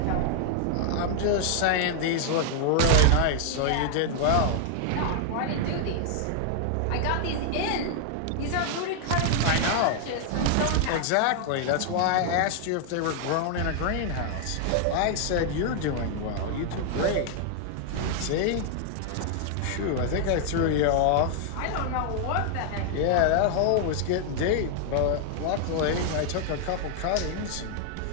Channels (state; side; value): different; both; correlation 0.00